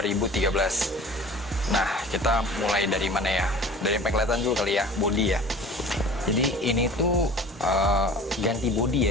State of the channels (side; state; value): both; normal; correlation 0.43